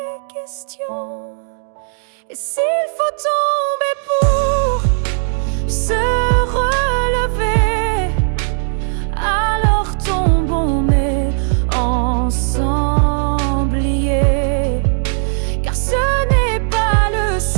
questions. Et s'il faut tomber pour se relever, alors tombons mais ensemble liés. Car ce n'est pas le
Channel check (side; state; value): left; silent; digital silence